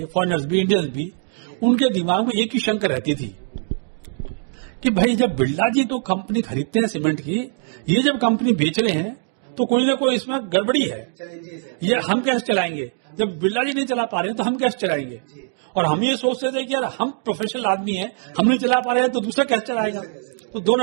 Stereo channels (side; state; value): left; silent; 64 dB below the other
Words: फॉरेनर्स भी इंडियंस भी, उनके दिमाग में एक ही शंका रहती थी कि भाई जब बिरला जी तो कंपनी खरीदते हैं सीमेंट की, ये जब कंपनी बेच रहे हैं तो कोई ना कोई इसमें गड़बड़ी है, ये हम कैसे चलाएंगे? जब बिरला जी नहीं चला पा रहे हैं तो हम कैसे चलाएंगे? और हम ये सोचते थे कि यार हम प्रोफेशनल आदमी हैं, हम नहीं चला पा रहे हैं तो दूसरा कैसे चलाएगा? तो